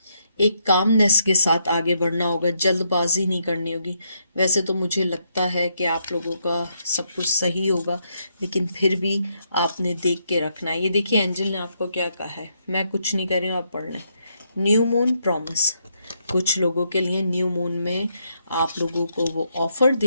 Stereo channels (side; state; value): both; inverted; correlation -0.77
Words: एक कामनेस के साथ आगे बढ़ना होगा, जल्दबाजी नहीं करनी होगी। वैसे तो मुझे लगता है कि आप लोगों का सब कुछ सही होगा, लेकिन फिर भी आपने देख के रखना है। ये देखिए एंजल ने आपको क्या कहा है, मैं कुछ नहीं कर रही हूँ, आप पढ़ लें। न्यू मून प्रॉमिस, कुछ लोगों के लिए न्यू मून में आप लोगों को वो ऑफ़र